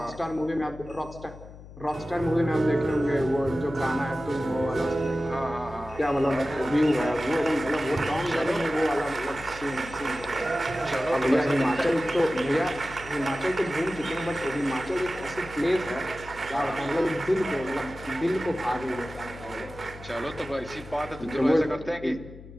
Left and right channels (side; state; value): left; noise; hum, 17 dB below the sound